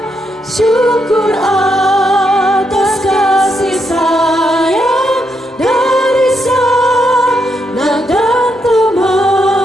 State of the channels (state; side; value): normal; both; correlation 0.79